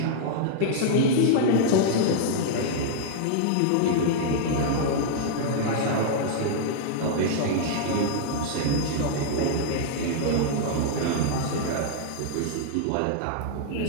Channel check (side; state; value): both; different; correlation -0.01